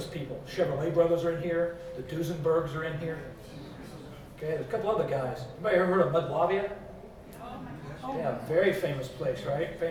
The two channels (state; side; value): identical; both; correlation 1.00